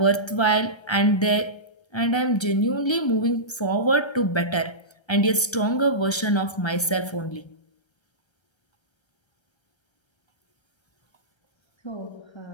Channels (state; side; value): late; right; 1.3 ms